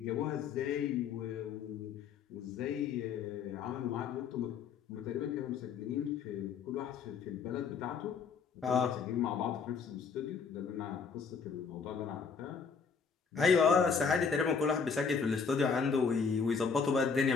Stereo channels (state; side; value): quieter; right; 5.7 dB